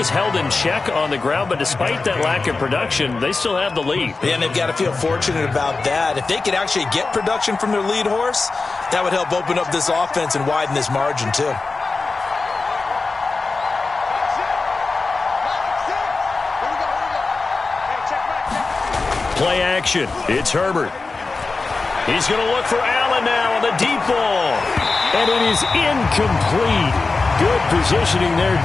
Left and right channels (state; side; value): quieter; right; 3.9 dB